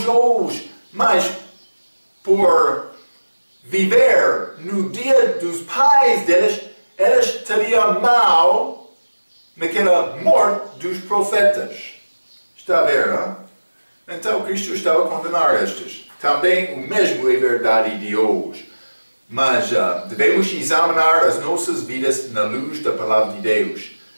hoje. Mas por viver no dia dos pais deles, eles teriam mal naquela morte dos profetas. Está a ver, não? Então Cristo estava a condenar estes. Também o mesmo é verdade de hoje. Mas devemos examinar as nossas vidas na luz da palavra de Deus.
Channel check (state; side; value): inverted; both; correlation -1.00